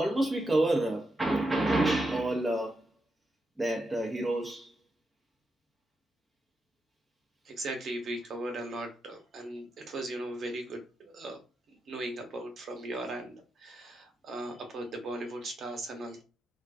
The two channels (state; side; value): normal; both; correlation 0.85